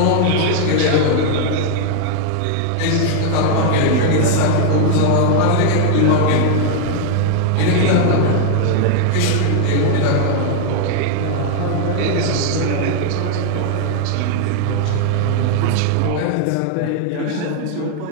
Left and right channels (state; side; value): different; both; correlation 0.00